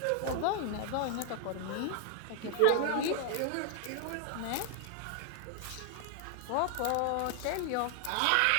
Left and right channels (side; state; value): both; different; correlation 0.00